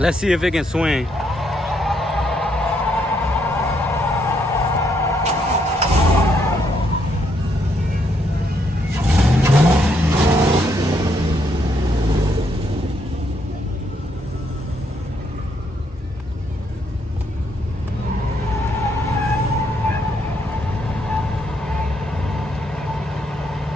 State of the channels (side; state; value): both; normal; correlation 0.74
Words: see if it can swing.